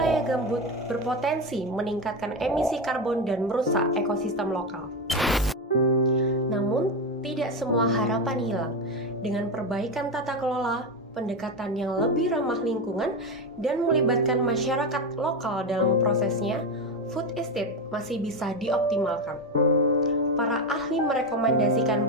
gambut, berpotensi meningkatkan emisi karbon dan merusak ekosistem lokal. Namun, tidak semua harapan hilang. Dengan perbaikan tata kelola, pendekatan yang lebih ramah lingkungan, dan melibatkan masyarakat lokal dalam prosesnya, food estate masih bisa dioptimalkan. Para ahli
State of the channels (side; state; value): both; normal; correlation 0.14